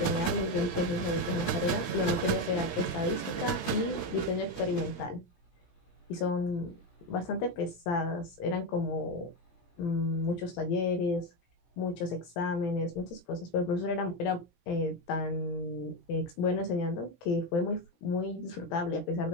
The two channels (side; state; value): right; late; 16 ms